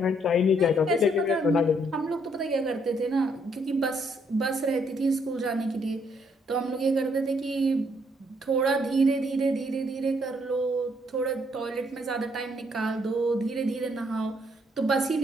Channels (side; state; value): both; normal; correlation 0.70